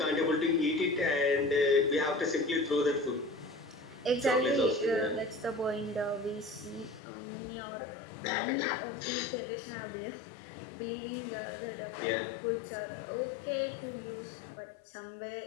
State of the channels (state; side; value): drops out; right; at 7.0 s